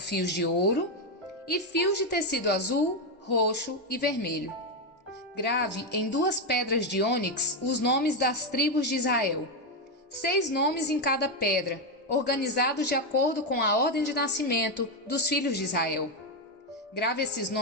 de ouro e fios de tecido azul, roxo e vermelho. Grave em 2 pedras de ônix os nomes das tribos de Israel. 6 nomes em cada pedra, organizados de acordo com a ordem de nascimento dos filhos de Israel. Grave esses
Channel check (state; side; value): normal; both; correlation 0.07